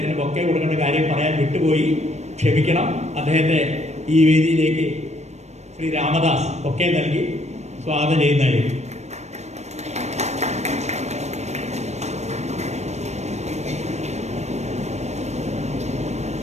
ബൊക്കെ കൊടുക്കേണ്ട കാര്യം പറയാൻ വിട്ടുപോയി, ക്ഷമിക്കണം. അദ്ദേഹത്തെ ഈ വേദിയിലേക്ക് ശ്രീ രാമദാസ് ബൊക്കെ നൽകി സ്വാഗതം ചെയ്യുന്നതായിരിക്കും.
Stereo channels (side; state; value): left; late; 0.32 ms